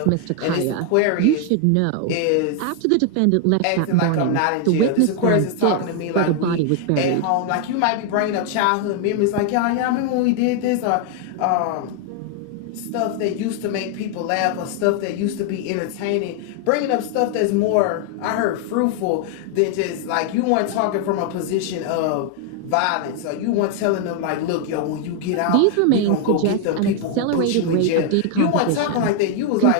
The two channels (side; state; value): both; different; correlation 0.00